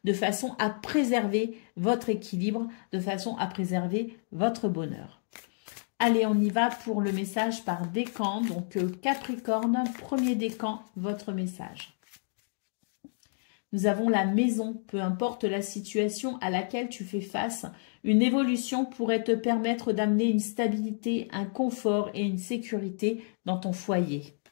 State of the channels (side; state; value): right; silent; digital silence